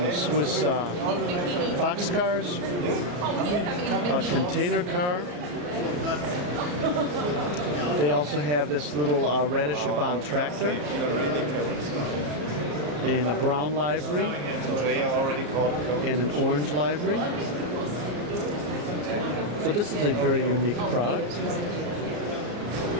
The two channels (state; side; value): late; left; 34 ms